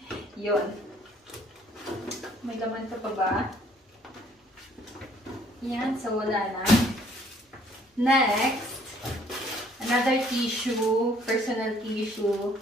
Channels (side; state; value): both; normal; correlation 0.61